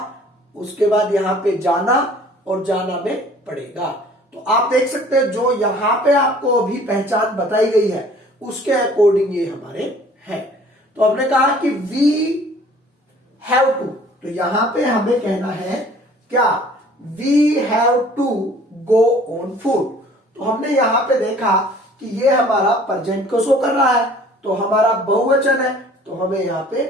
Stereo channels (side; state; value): both; normal; correlation 0.52